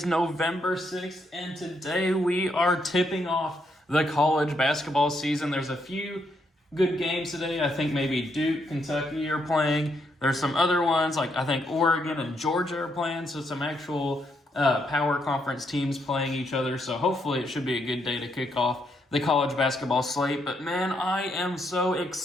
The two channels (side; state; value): both; normal; correlation 0.77